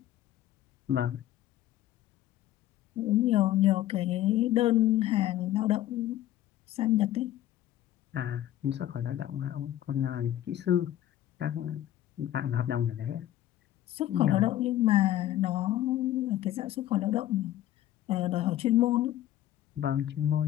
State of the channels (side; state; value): right; quieter; 13.2 dB